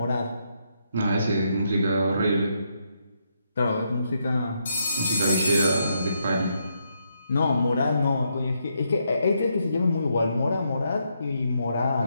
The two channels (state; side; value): inverted; both; correlation -0.78